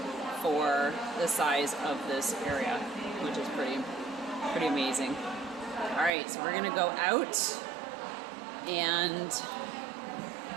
for the size of this area, which is pretty amazing. All right, so we're gonna go out and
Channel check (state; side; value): drops out; left; at 6.1 s